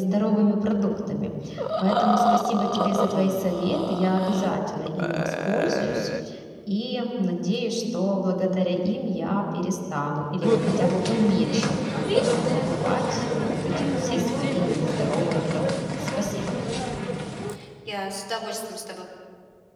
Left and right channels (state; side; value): identical; both; correlation 1.00